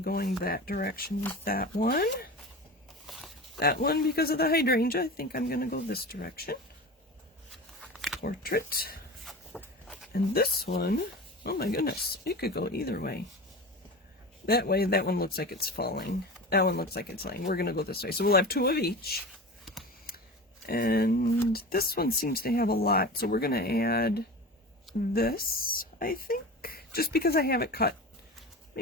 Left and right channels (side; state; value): both; normal; correlation 0.31